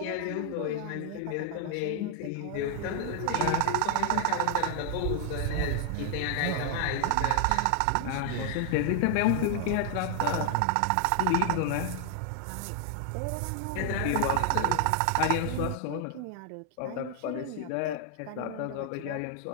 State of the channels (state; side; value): different; both; correlation 0.00